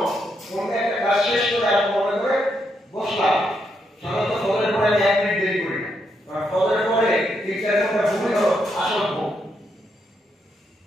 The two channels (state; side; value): normal; both; correlation 0.79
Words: কোন একটা কাজ শেষ করে আমি মনে করে বসলাম। সাধারণত ফজরের পরে আমি 1 মিনিট দেরি করি না, কারণ ফজরের পরে 3-4 ঘন্টা ঘুমই হলো আসল ঘুম।